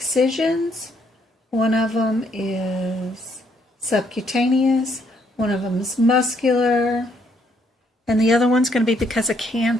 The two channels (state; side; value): normal; both; correlation 0.70